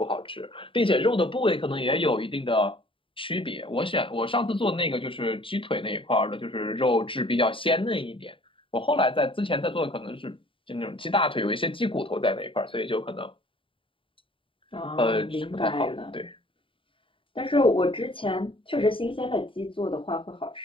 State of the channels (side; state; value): right; late; 0.25 ms